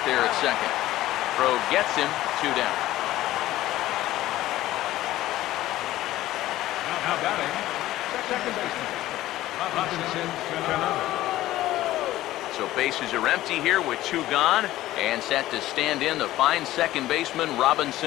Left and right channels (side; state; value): right; quieter; 15.3 dB